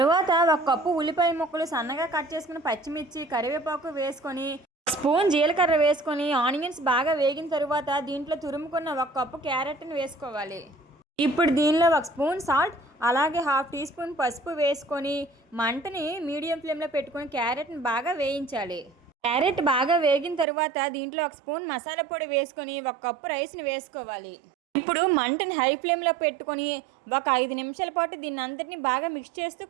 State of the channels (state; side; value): drops out; left; at 20.5 s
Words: 1 కప్పు ఉల్లిపాయ ముక్కలు, సన్నగా కట్ చేసుకున్న పచ్చిమిర్చి, కరివేపాకు వేసుకొని స్పూన్ జీలకర్ర వేసుకొని ఆనియన్స్ బాగా వేగిన తరువాత దీంట్లో తురుముకున్న 1 కప్పు క్యారెట్ని వేసుకోవాలి. ఇప్పుడు దీనిలో 1 స్పూన్ సాల్ట్ అలాగే 1/2 టీ స్పూన్ పసుపు వేసుకొని మంటని మీడియం ఫ్లేమ్లో పెట్టుకొని క్యారెట్ని బాగా వేయించాలి. క్యారెట్ బాగా వేగిన తరువాత దీంట్లో 1 స్పూన్ మసాలా పొడి వేసుకొని 1 కప్పు రైస్ని వేసుకోవాలి. ఇప్పుడు మంటని హై ఫ్లేమ్లో పెట్టుకొని ఒక 5 నిమిషాల పాటు దీన్ని అంతటిని బాగా మిక్స్ చేస్తూ